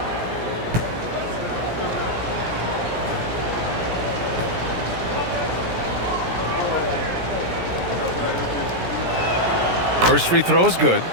First free throw is good.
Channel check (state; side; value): late; left; 17 ms